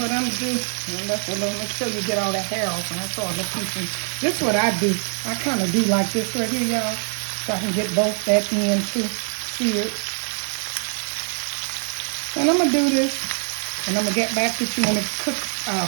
I'm gonna do, make sure you get all the hair off, and that's all the pieces. This is what I do. I kind of do like this right here, y'all, so I can get both that end too seared. And I'm gonna do this, and I'm gonna get back with you when it cooks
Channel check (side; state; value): left; silent; 63 dB below the other